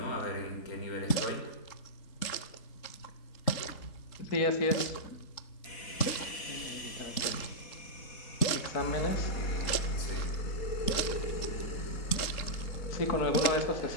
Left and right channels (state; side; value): late; right; 3.8 ms